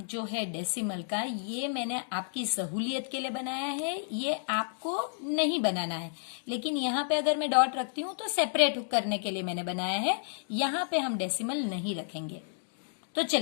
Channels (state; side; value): silent; right; digital silence